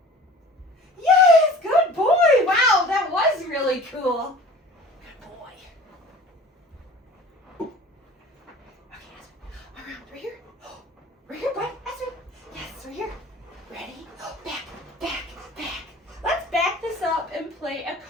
Yes, good boy. Wow, that was really cool. Good boy. Right here. Right here, bud. Aspen. Yes, right here. Ready? Back. Let's back this up and play a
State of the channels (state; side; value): normal; both; correlation 0.43